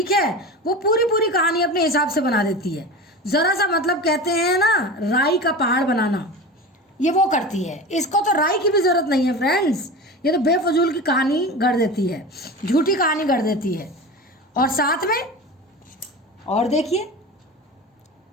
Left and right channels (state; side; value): normal; both; correlation 0.30